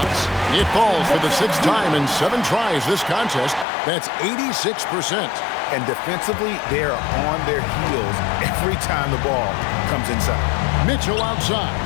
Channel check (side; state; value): right; drops out; at 3.7 s